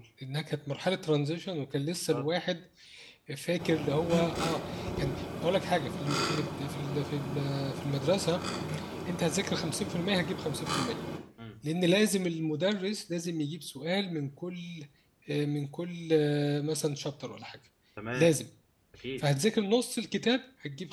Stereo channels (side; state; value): both; identical; correlation 1.00